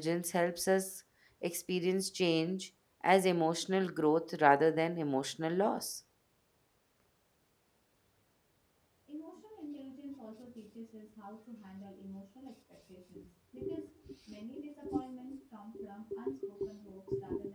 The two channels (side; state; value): both; identical; correlation 1.00